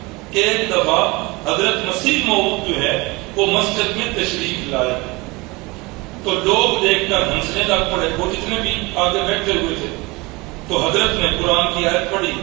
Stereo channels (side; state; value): left; quieter; 24.3 dB